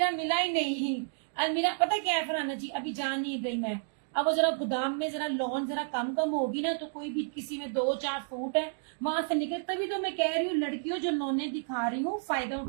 मिला ही नहीं। अलमीरा पता क्या है फरहाना जी, अभी जान नहीं रही मैं। अब वो जरा गोदाम में जरा लॉन जरा कम होगी ना, तो कोई भी किसी में 2-4 सूट है वहां से निकल। तभी तो मैं कह रही हूँ लड़कियों जो लॉने दिखा रही हूँ फायदा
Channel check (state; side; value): silent; left; digital silence